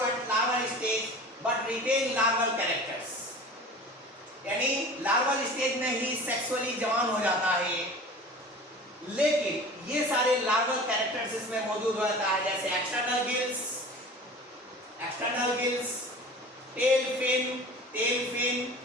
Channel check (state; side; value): normal; both; correlation 0.39